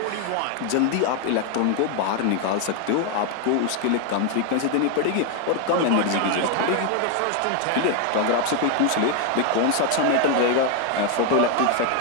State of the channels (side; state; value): both; different; correlation 0.01